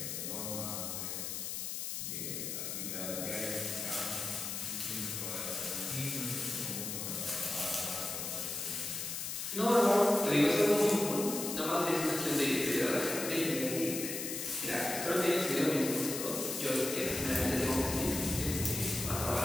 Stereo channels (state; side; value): noise; left; hiss, 4 dB below the sound